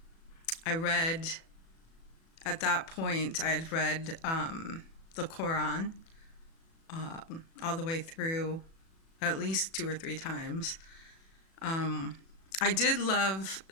read, at that point, I had read the Quran all the way through at least 2 or 3 times. I did love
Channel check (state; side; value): late; right; 36 ms